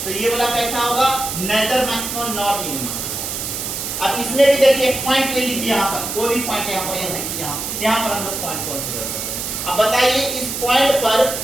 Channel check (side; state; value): right; noise; hiss, 4 dB below the sound